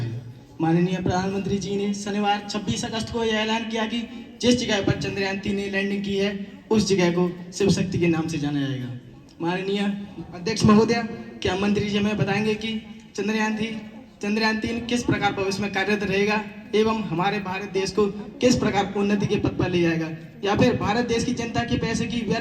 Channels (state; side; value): identical; both; correlation 1.00